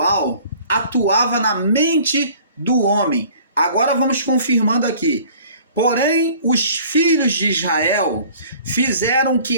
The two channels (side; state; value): both; inverted; correlation -0.50